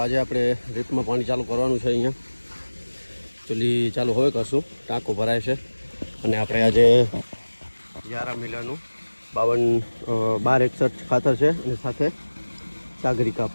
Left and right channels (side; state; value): both; inverted; correlation -1.00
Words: આજે આપણે રીપમાં પાણી ચાલુ કરવાનું છે. અહીંયા ચૂલી ચાલુ હવે કરશું, ટાંકો ભરાય છે. અને આપણે આજે 11 મિલાનું 1261 ખાતર છે અને સાથે સાગરિકા